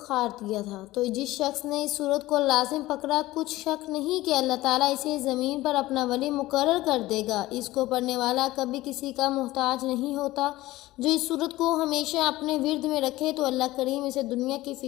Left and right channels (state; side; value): quieter; right; 17.6 dB